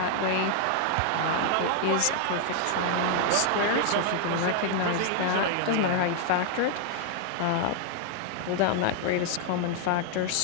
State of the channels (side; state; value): both; different; correlation 0.00